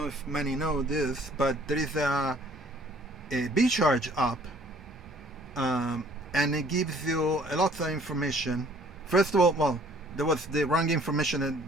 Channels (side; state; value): both; normal; correlation 0.57